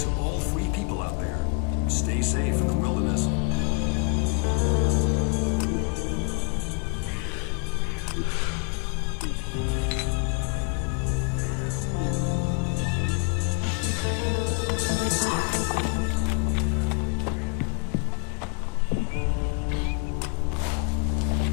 all free people out there. Stay safe in the wilderness.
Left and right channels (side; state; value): right; quieter; 32.2 dB